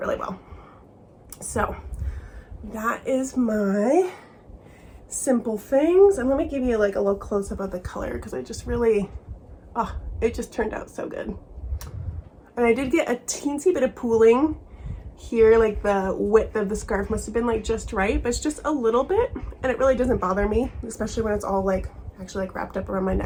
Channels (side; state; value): both; identical; correlation 1.00